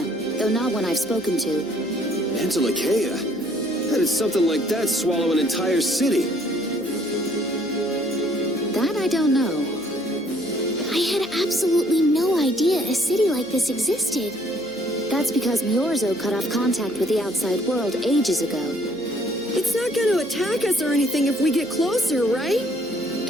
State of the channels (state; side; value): noise; right; hum, 26 dB below the sound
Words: though not one I've spoken to. Entelekea? How did something like that swallow an entire city? That I don't know. I had absolutely no idea a city like this existed. That's because Myorzo cut off contact with the outside world ages ago. It's not going to attack us or anything if we get closer, right?